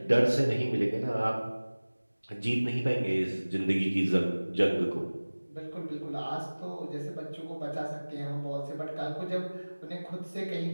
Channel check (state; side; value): inverted; both; correlation -1.00